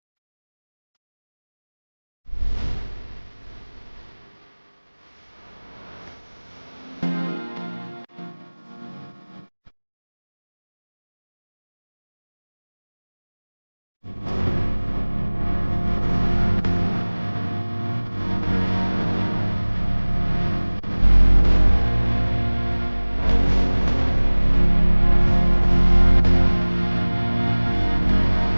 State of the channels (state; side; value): inverted; both; correlation -1.00